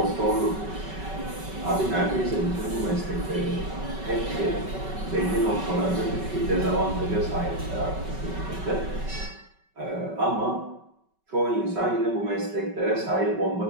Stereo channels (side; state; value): left; late; 5.3 ms